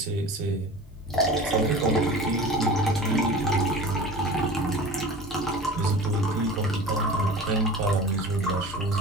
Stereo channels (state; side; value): normal; both; correlation 0.37